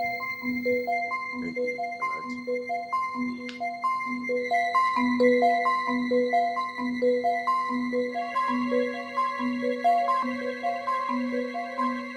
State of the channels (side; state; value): both; identical; correlation 1.00